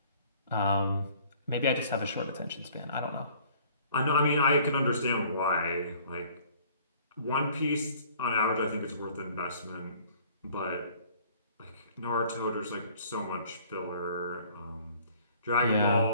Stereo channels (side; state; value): both; inverted; correlation -0.55